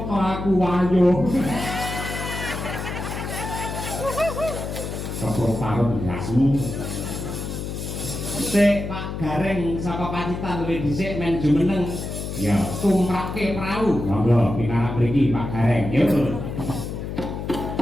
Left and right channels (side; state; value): left; noise; hum, 6 dB below the sound